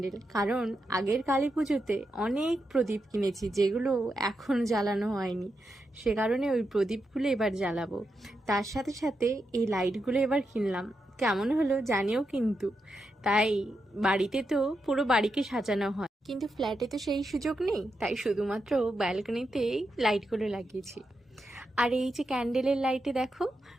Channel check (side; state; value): both; normal; correlation 0.86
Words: কারণ আগের কালী পুজোতে অনেক প্রদীপ কিনেছি যেগুলো এখন জ্বালানো হয়নি, সে কারণে ওই প্রদীপগুলো এবার জ্বালাবো। তার সাথে সাথে এই লাইটগুলো এবার কিনলাম, কেমন হলো জানিও কিন্তু। তাই বাড়িতে তো পুরো বাড়িকে সাজানো হয়, কিন্তু ফ্ল্যাটে তো সেই সুযোগ নেই, তাই শুধুমাত্র ব্যালকনিতেই লাইটগুলো লাগিয়েছি। আর এই যে ক্যান্ডেলের লাইটে দেখো,